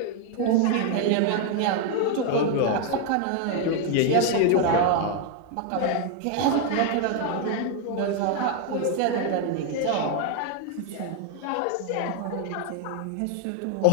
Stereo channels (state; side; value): different; both; correlation 0.01